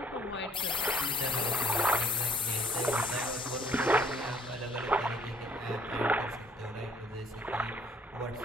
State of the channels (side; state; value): both; normal; correlation 0.58